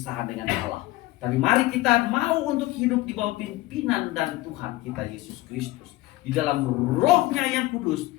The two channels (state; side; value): quieter; right; 18.4 dB